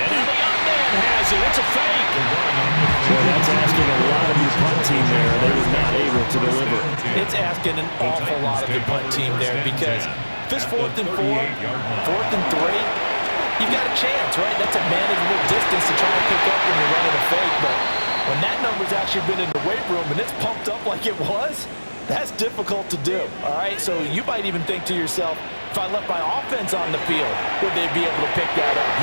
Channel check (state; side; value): inverted; both; correlation -1.00